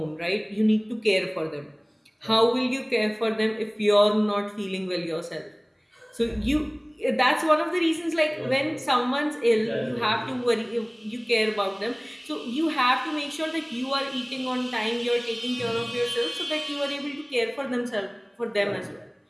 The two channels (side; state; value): both; identical; correlation 1.00